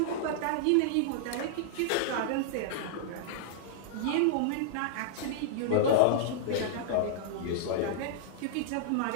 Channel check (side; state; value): both; different; correlation -0.01